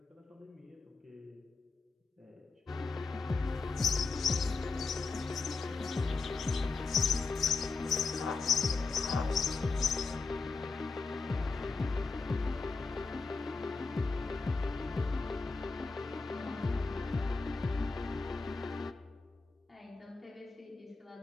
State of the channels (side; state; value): right; quieter; 4.1 dB